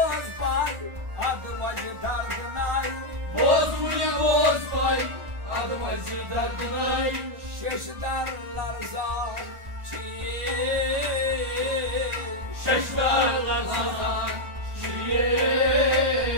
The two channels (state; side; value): late; left; 1.4 ms